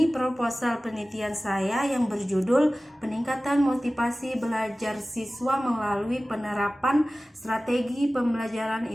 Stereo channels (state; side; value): normal; both; correlation 0.97